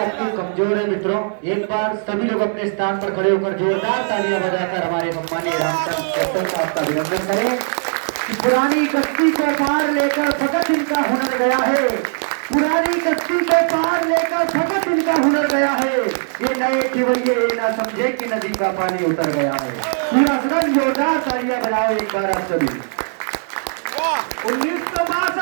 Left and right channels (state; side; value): silent; left; digital silence